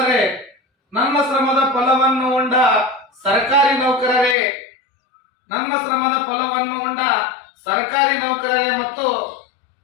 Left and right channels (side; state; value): right; drops out; at 4.4 s